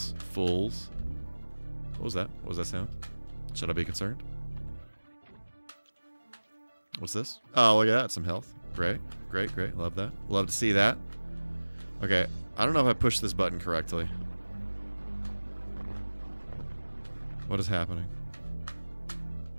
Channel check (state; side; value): inverted; both; correlation -1.00